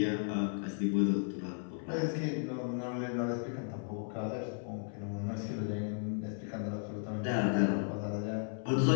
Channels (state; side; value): silent; right; 54 dB below the other